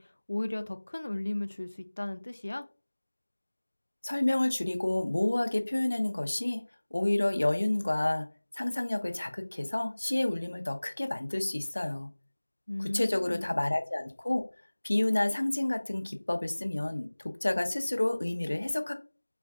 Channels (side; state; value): both; inverted; correlation -1.00